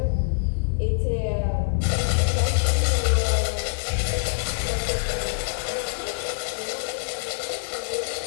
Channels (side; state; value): right; silent; digital silence